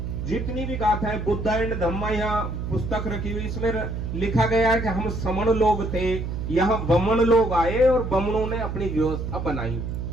जितनी भी गाथाएं बुद्ध एंड धम्मा यहाँ पुस्तक रखी हुई, इसमें लिखा गया है कि हम समण लोग थे, यहाँ बमन लोग आए और बमनों ने अपनी व्यवस्था बनाई।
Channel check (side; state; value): right; noise; hum, 4 dB below the sound